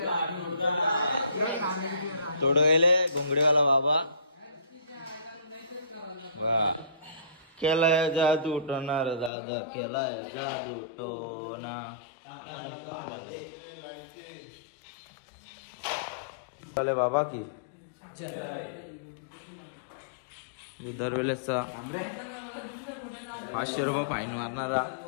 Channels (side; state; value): right; drops out; at 9.3 s